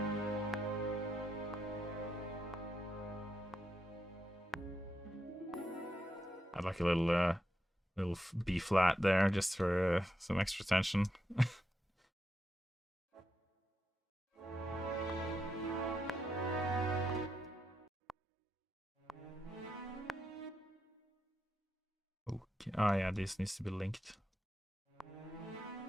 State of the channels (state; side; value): normal; both; correlation 0.84